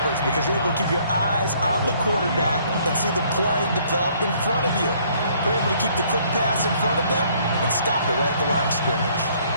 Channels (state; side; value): inverted; both; correlation -0.63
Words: because you're able to keep your eyes on the quarterback and see the play develop in front of you. They're able to keep the quick pass in front of them and stop it right at the line of scrimmage.